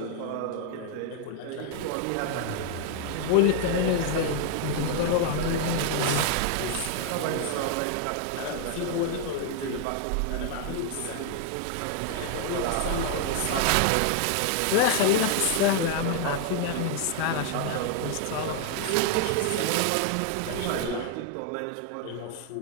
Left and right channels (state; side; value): different; both; correlation 0.00